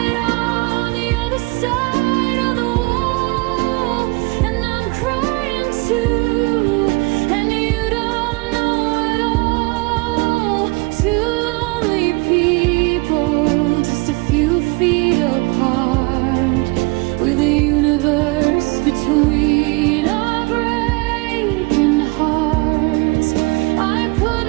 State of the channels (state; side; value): quieter; left; 27.1 dB